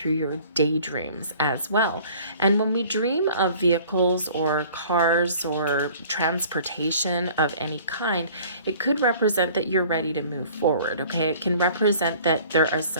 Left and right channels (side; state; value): both; inverted; correlation -0.50